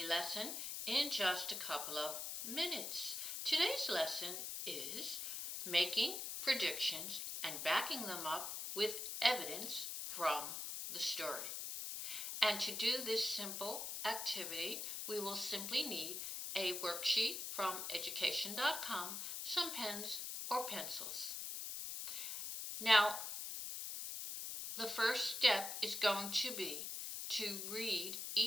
lesson in just a couple of minutes. Today's lesson is making predictions and backing them up with evidence from the story. And to do this simple activity, we will simply need a worksheet from education.com, some pens or pencils. Now, the first step is going to be to read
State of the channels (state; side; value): noise; left; hiss, 4 dB below the sound